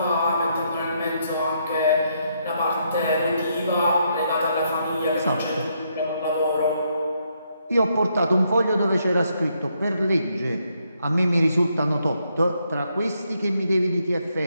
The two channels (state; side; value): inverted; both; correlation -0.76